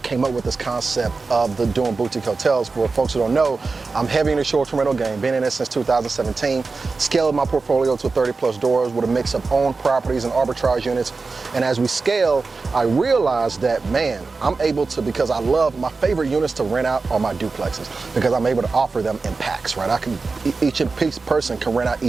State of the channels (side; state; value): left; quieter; 4.1 dB